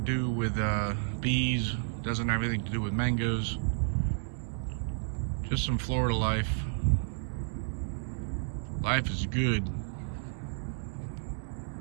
to do with bees, doesn't have anything to do with mangoes, just some Florida life. Life is good.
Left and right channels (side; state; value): left; silent; digital silence